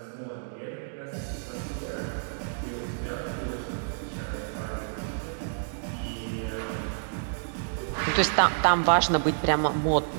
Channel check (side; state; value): left; silent; digital silence